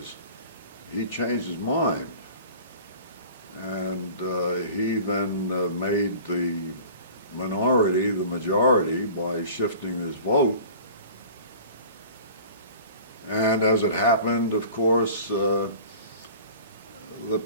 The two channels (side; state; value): both; inverted; correlation -0.42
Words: he changed his mind. And he then made the minority the majority by shifting his vote. And as it happened, of course, the